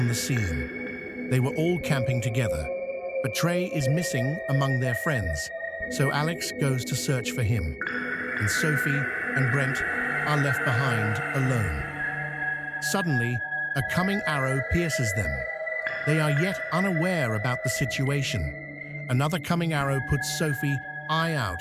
the scene. They were all camping together, but Trey is missing among their friends, so Alex goes to search for him, and Sophie and Brent are left behind alone. Suddenly, a coming arrow pierces them. They are yet unaware about the situation. Another coming arrow puts Sophie eye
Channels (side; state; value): both; identical; correlation 1.00